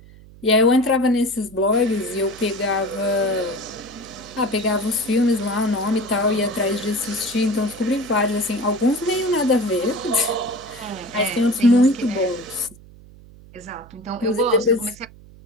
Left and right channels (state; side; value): noise; right; hum, 22 dB below the sound